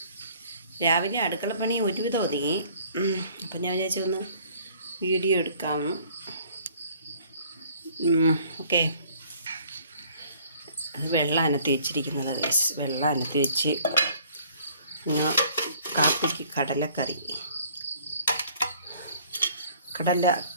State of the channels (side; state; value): both; inverted; correlation -0.57